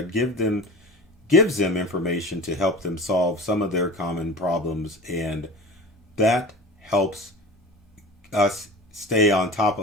gives them information to help them solve some of their common problems, and that helps us stay on top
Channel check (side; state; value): both; normal; correlation 0.35